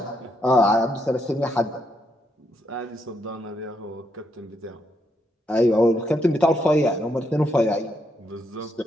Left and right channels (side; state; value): both; normal; correlation 0.78